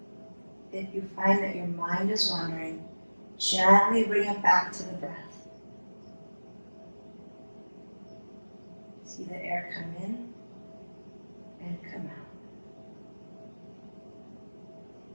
If you find that your mind is wandering, gently bring it back to the breath. See the air come in and come out.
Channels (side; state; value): both; inverted; correlation -1.00